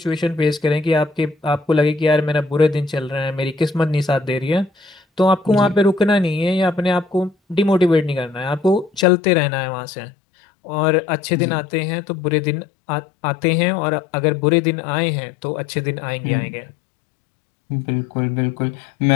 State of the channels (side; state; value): right; drops out; at 9.1 s